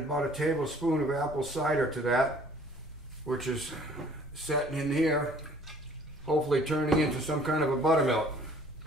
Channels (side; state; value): both; normal; correlation 0.55